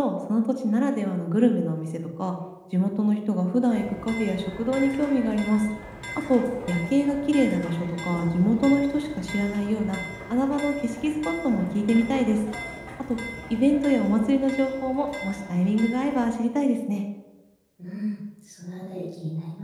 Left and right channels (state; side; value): identical; both; correlation 1.00